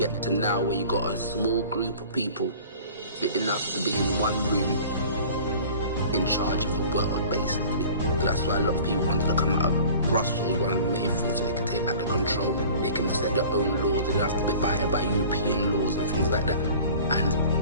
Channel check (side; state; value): both; inverted; correlation -0.44